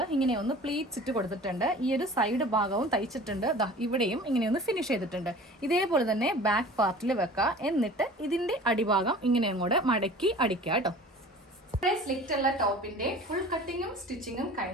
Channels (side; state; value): both; normal; correlation 0.43